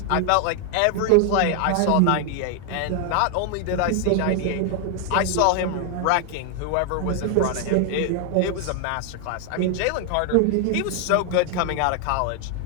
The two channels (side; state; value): both; different; correlation 0.00